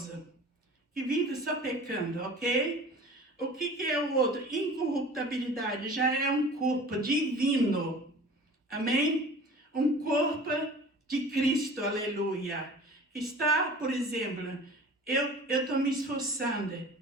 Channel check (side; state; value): both; normal; correlation 0.42